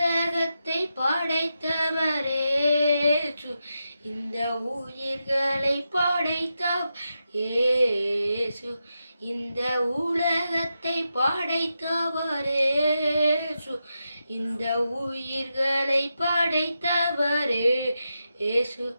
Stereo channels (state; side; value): inverted; both; correlation -0.87